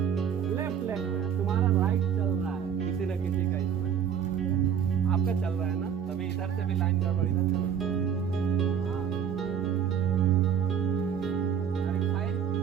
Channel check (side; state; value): left; quieter; 8.1 dB